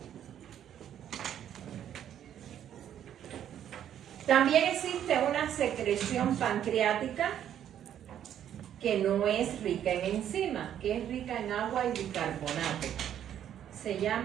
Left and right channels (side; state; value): left; quieter; 10.2 dB